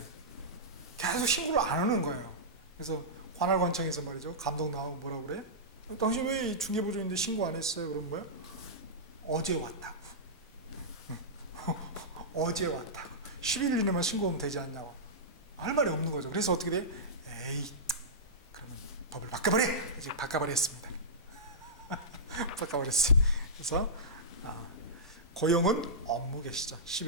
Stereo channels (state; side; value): normal; both; correlation -0.14